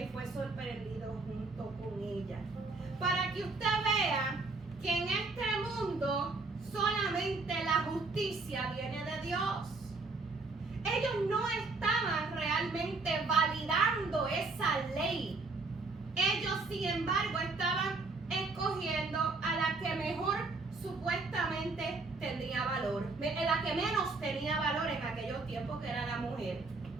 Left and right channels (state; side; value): quieter; left; 3.7 dB